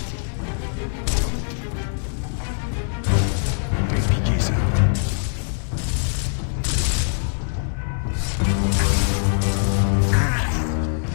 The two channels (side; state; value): right; silent; 58 dB below the other